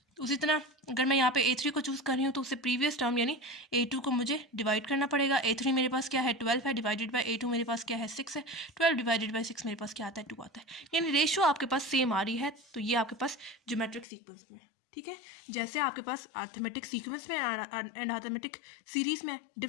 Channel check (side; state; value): right; drops out; at 14.1 s